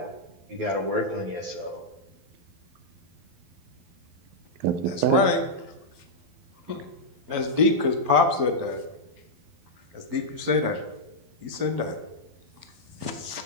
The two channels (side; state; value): left; late; 12 ms